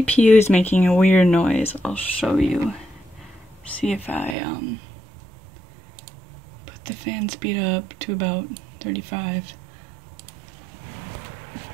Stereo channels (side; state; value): left; drops out; at 4.4 s